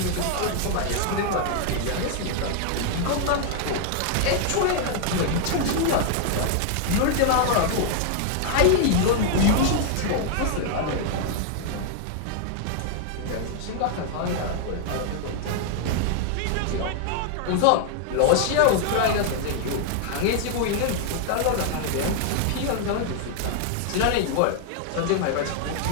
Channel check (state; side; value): different; both; correlation 0.00